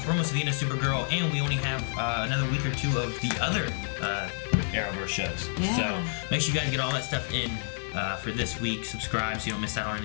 We're almost to the end of Supergirl, and we only have another week or two of the other Arrowverse shows. Yeah. So make sure you guys get all that stuff in for this week. Subscribe so you don't miss out on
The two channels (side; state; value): right; silent; digital silence